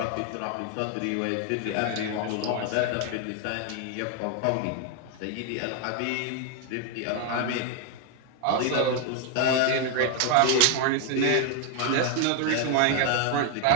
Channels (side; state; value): both; different; correlation 0.01